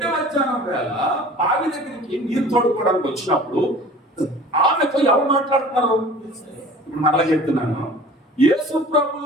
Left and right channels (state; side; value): normal; both; correlation 0.44